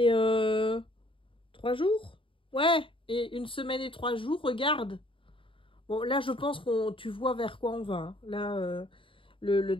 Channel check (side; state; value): right; late; 0.25 ms